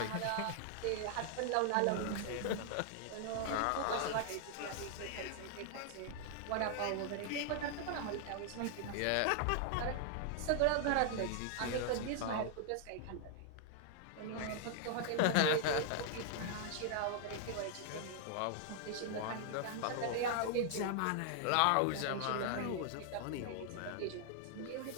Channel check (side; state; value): both; different; correlation 0.00